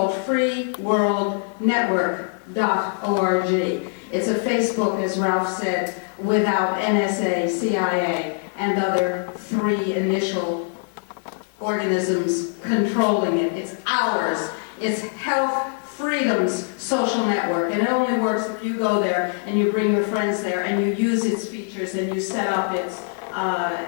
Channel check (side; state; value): right; silent; 57 dB below the other